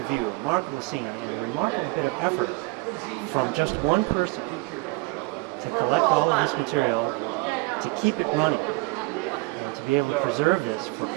view, remarkable scene, and a remarkable bit of effort from just one person to collect all of this material, to keep it running, and to be able to preserve this for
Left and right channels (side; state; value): left; quieter; 26.1 dB